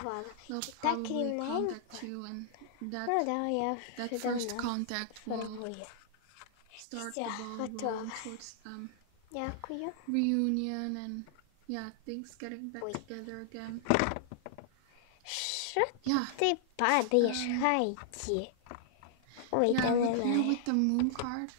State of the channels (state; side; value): different; both; correlation -0.01